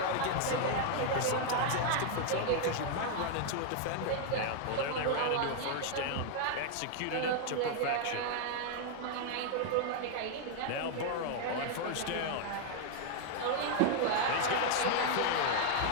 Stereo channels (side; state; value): both; different; correlation 0.00